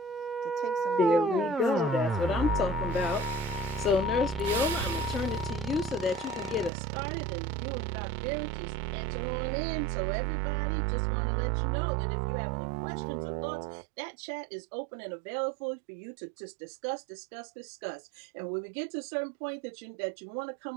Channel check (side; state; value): left; drops out; at 6.7 s